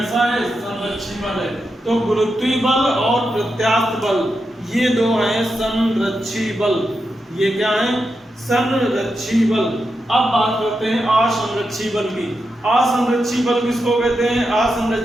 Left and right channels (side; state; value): both; normal; correlation 0.87